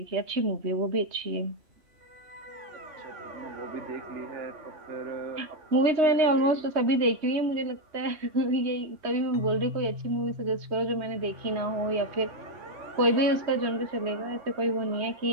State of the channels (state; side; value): late; left; 3.2 ms